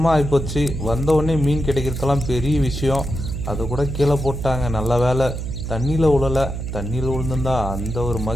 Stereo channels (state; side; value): noise; right; hum, 5 dB below the sound